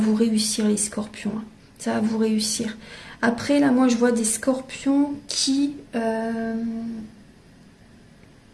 réussir, les scorpions. Ça va vous réussir. Après, là, moi, je vois des scorpions qui...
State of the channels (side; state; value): both; identical; correlation 1.00